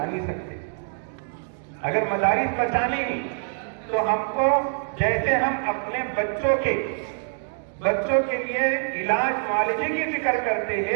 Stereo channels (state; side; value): silent; left; digital silence